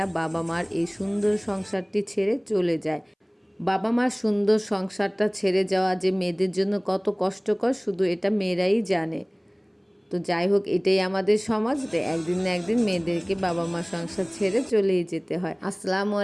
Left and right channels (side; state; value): both; identical; correlation 1.00